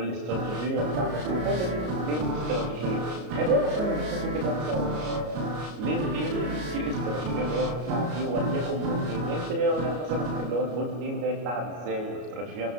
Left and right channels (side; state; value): left; late; 33 ms